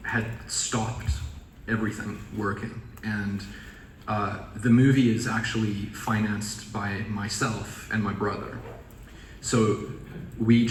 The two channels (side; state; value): both; identical; correlation 1.00